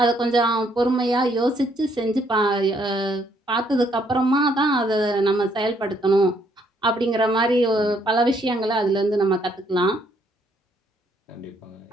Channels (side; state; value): both; normal; correlation 0.69